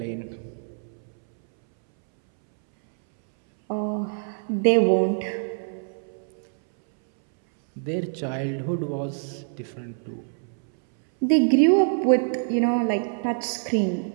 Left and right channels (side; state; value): left; silent; 62 dB below the other